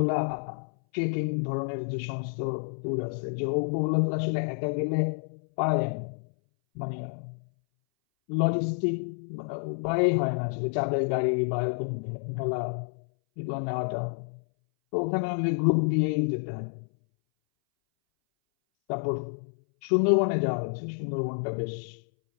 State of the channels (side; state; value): right; silent; 59 dB below the other